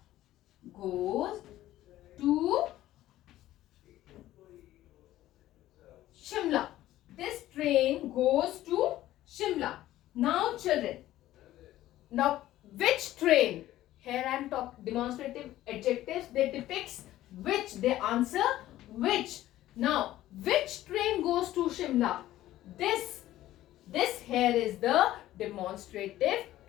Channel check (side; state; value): right; quieter; 14.5 dB